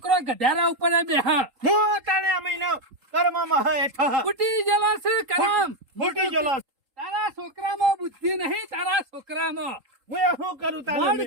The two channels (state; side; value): late; left; 3.8 ms